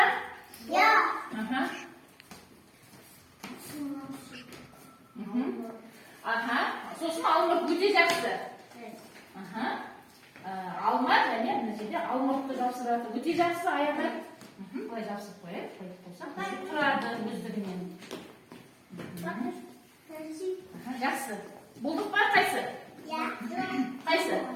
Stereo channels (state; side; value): identical; both; correlation 1.00